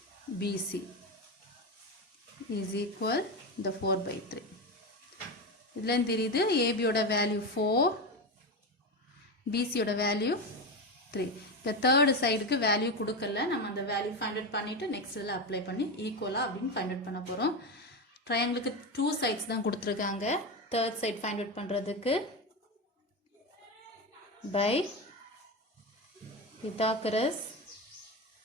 BC is equal the 4 by 3. இதில் தெரியுது AB ஓட வேல்யூ 4, BC ஓட வேல்யூ 3. இந்த தேர்டு சைடுக்கு வேல்யூ கொடுக்கல. நம்ம அந்த வேல்யூ ஃபைண்ட் அவுட் பண்ணிட்டு நெக்ஸ்ட் இதில் அப்ளை பண்ணி ஈக்குவலா அப்படின்னு ஃபைண்ட் அவுட் பண்ண போகிறோம். ட்ரையாங்கிளுக்கு 2 சைட்ஸ் தான் கொடுத்துருக்காங்க. தேர்ட் சைட் ஃபைண்ட் அவுட் பண்ணுறதுக்கு by Pythagoras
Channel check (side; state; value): both; normal; correlation 0.17